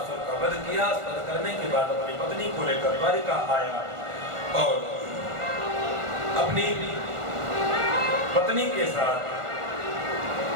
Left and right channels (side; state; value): left; late; 1.5 ms